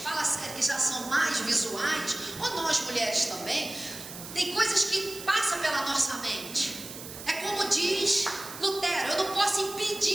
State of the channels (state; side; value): noise; right; hiss, 12 dB below the sound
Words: que já são mais visuais, ou nós mulheres também, tem coisas que passam pela nossa mente. É como diz Lutero: eu não posso